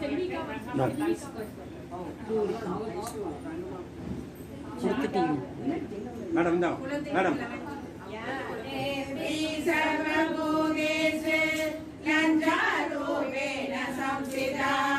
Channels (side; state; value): both; identical; correlation 1.00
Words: மேடம் தான் மேடம் देवी सर्वभूतेषु लज्जारूपेण संस्थिता